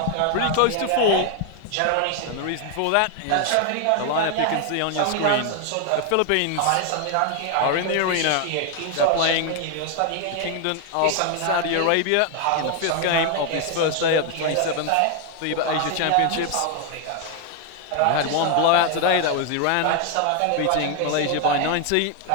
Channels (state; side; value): different; both; correlation 0.00